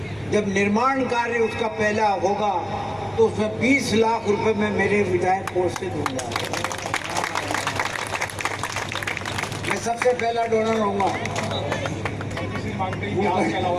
जब निर्माण कार्य उसका पहला होगा तो उसमें 20 लाख रुपए में मेरे विधायक कोष से दूंगा। मैं सबसे पहला डोनर होऊंगा।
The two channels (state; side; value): noise; right; rumble, 24 dB below the sound